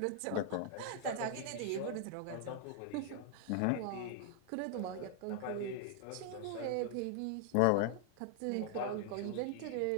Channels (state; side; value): different; both; correlation 0.00